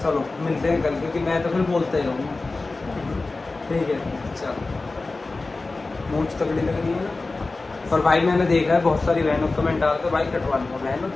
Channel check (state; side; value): quieter; right; 3.5 dB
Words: चलो मिलते हैं कल, क्योंकि मैं तो फिर बोलते ही रहूँगा, ठीक है। चलो, मूंछ तगड़ी लग रही है ना। और भाई मैंने देखा है बहुत सारी बहनों कमेंट डालते, भाई कटवा लो बहनों,